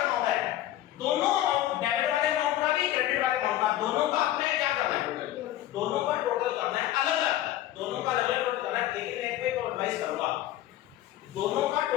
होता है, दोनों अमाउंट, डेबिट वाले अमाउंट का भी क्रेडिट वाले अमाउंट का, दोनों का आपने क्या करना है, दोनों का टोटल करना है, अलग अलग दोनों का अलग अलग टोटल करना है। लेकिन एक पे तो एडवाइस करूंगा, दोनों का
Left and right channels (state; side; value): quieter; right; 13.8 dB